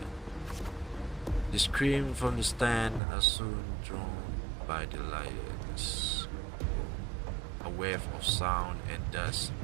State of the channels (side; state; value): left; drops out; at 3.0 s